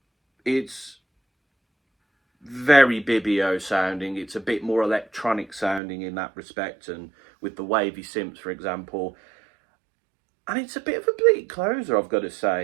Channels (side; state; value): left; drops out; at 5.8 s